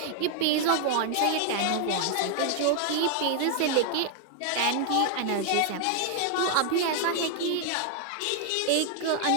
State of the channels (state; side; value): different; both; correlation 0.00